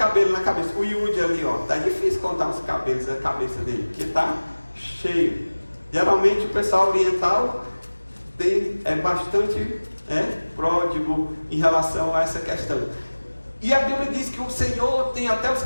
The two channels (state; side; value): inverted; both; correlation -1.00